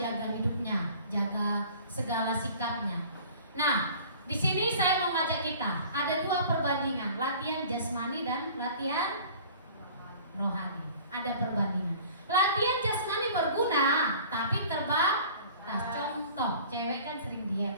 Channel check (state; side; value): inverted; both; correlation -0.46